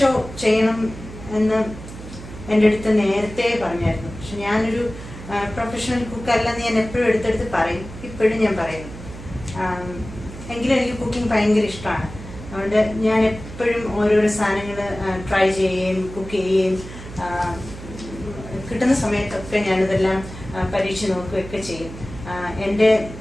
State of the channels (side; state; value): right; noise; hum, 13 dB below the sound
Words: ചെയ്യണം എന്ന് എൻ്റെ അടുത്ത് നേരത്തെ പറഞ്ഞായിരുന്നു. പക്ഷെ ഞാനൊരു പ്രൊഫഷണൽ കുക്കല്ലെന്ന് ഞാൻ എപ്പോഴും എടുത്തെടുത്ത് പറയും. ഇപ്പോഴും ഞാൻ പറയുന്നു. എങ്കിലും എനിക്ക് കുക്കിംഗ് ഭയങ്കര ഇഷ്ടമാണ്. അതുകൊണ്ട് ഞാൻ എപ്പോഴും ഓരോരോ സാധനങ്ങൾ ട്രൈ ചെയ്യുകയും കുക്ക് ചെയ്യുകയും കിട്ടുന്ന സമയത്തൊക്കെ ഞാനിതെല്ലാം പരീക്ഷിച്ച് നോക്കുകയൊക്കെ ചെയ്യും. എൻ്റെ